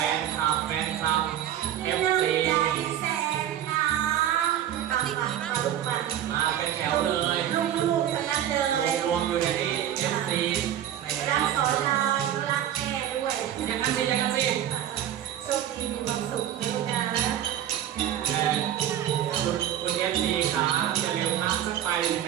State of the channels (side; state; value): left; quieter; 11.0 dB